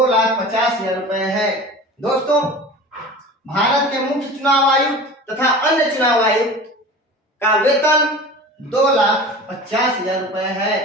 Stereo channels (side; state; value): both; normal; correlation 0.37